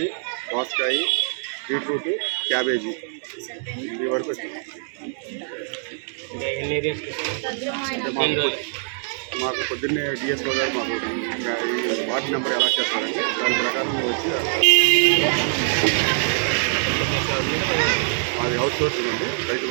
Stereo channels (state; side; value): silent; left; 63 dB below the other